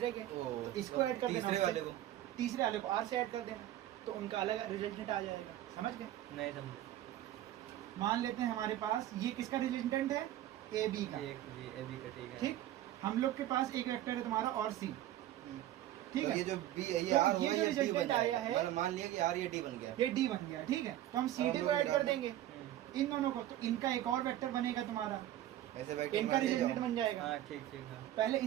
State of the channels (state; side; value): quieter; left; 13.3 dB